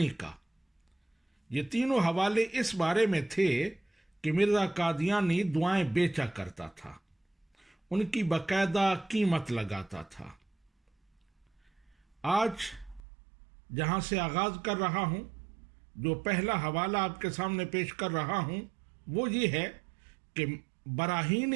کا۔ یہ تینوں حوالے اس بارے میں تھے کہ مرزا قادیانی دعائیں بیچا کرتا تھا، ان کی باقاعدہ قیمت لگاتا تھا۔ آج جہاں سے آغاز کر رہا ہوں، جو پہلا حوالہ آپ کے سامنے پیش کر رہا ہوں، وہ یہ ہے کہ براہین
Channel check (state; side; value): drops out; left; at 13.0 s